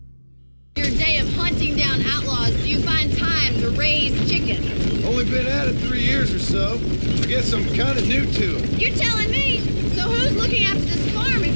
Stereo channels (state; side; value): inverted; both; correlation -1.00